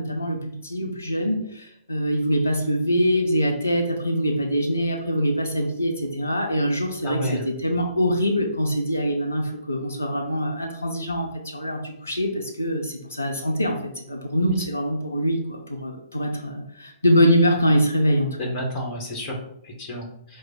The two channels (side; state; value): both; inverted; correlation -0.77